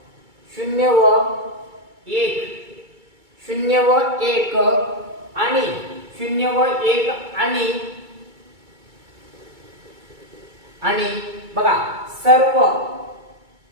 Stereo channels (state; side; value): late; left; 2.3 ms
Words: 1, 0 व 1 आणि 0 व 1 आणि बघा सर्व